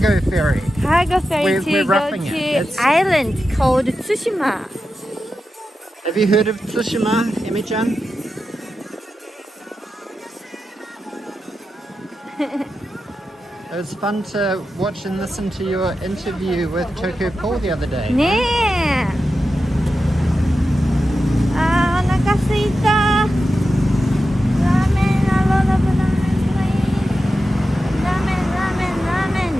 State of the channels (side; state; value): both; normal; correlation 0.91